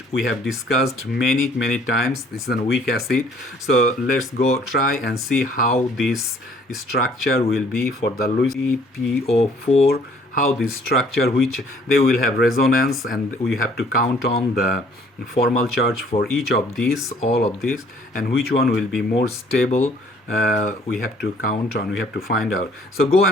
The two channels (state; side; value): normal; both; correlation 0.59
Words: we have discussed many times. This is a weak acid. So let's go try and see how this structure will be for the LuCPO4, how this structure, which they will have resonance, and we have to count on the formal charge for each of these, all of these, and which one will be more stable. We have to count on, we have to find out. So go